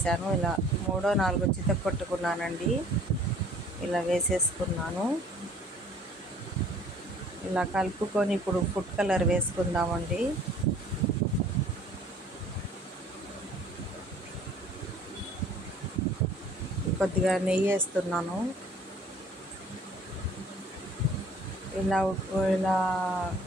ఇలా 3-4 చితక్కొట్టుకున్నానండి. ఇలా వేసేసుకున్నాను. ఇలా కలుపుకొని ఇప్పుడు ఫుడ్ కలర్ వేసుకుందామండి. కొద్దిగా నెయ్యి వేస్తున్నాను.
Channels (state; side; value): normal; both; correlation 0.53